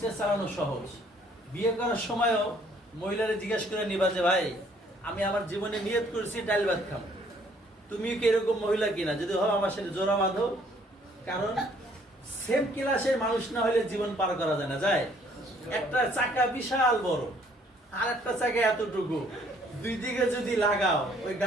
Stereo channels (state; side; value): normal; both; correlation 0.62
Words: চালানো সহজ। বিয়ে করার সময়ও মহিলারে জিজ্ঞেস করে নিবা যে ভাই আমি আমার জীবনে নিয়ত করেছি ডাল ভাত খাবো, তুমি কি এরকম মহিলা কিনা? যদি হয় আমার সাথে জোড়া বাঁধো। কারণ সেম ক্লাসের মানুষ না হলে জীবন পার করা যায় না। যায় একটা চাকা বিশাল বড়, আর একটা চাকা এতটুকু, দুই দিকে যদি লাগাও ওই